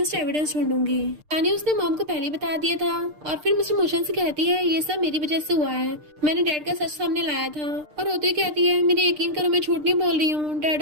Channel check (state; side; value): late; left; 6.6 ms